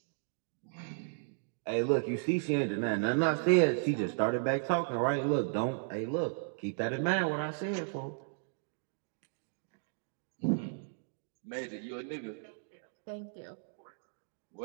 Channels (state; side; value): silent; left; digital silence